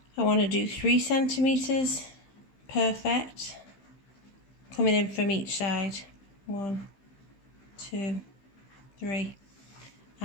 I want to do 3 centimetres, perfect, coming in from each side. 1, 2, 3,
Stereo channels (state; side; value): late; right; 15 ms